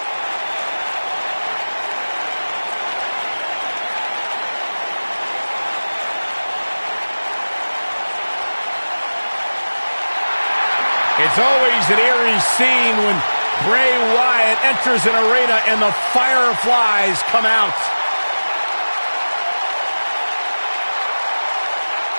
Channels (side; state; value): both; inverted; correlation -1.00